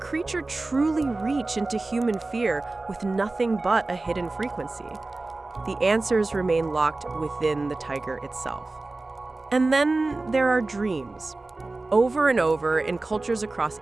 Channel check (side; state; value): left; quieter; 3.2 dB